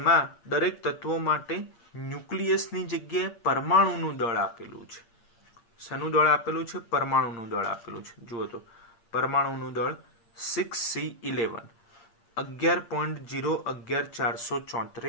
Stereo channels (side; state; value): right; late; 8.7 ms